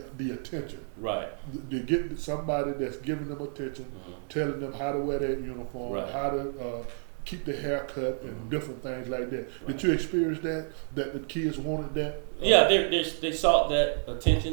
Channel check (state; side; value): silent; left; 56 dB below the other